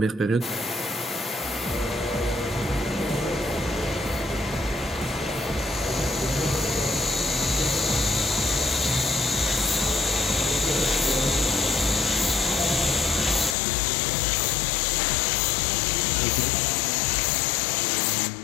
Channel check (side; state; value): right; drops out; at 13.6 s